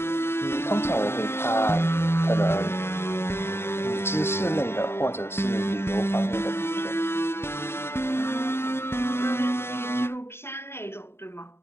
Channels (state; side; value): late; right; 0.12 ms